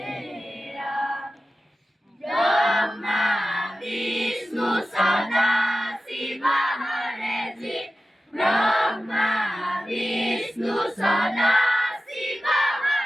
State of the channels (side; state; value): both; normal; correlation 0.94